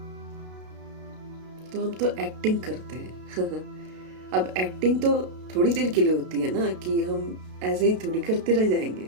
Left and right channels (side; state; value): left; late; 32 ms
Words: तो हम तो एक्टिंग करते हैं। अब एक्टिंग तो थोड़ी देर के लिए होती है ना, कि हम ऐसे ही थोड़ी करते रह जाएंगे।